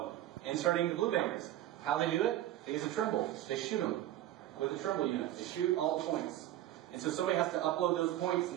inserting the blue bangers. How they do it? They use a Trimble. They shoot them with a Trimble unit. They shoot all the points. And so somebody has to upload those points and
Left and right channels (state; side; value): quieter; left; 13.6 dB